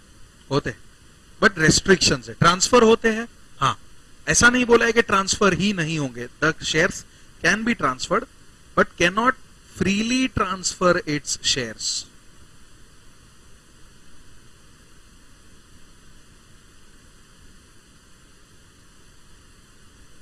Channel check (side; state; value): both; identical; correlation 1.00